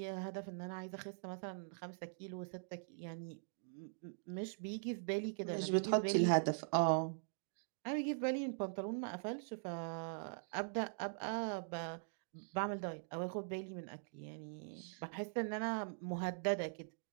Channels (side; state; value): left; silent; digital silence